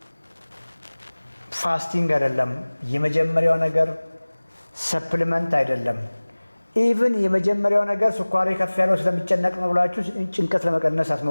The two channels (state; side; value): inverted; both; correlation -1.00